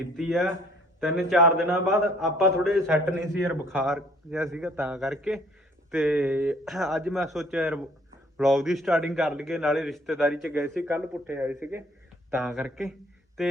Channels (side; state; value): both; normal; correlation 0.59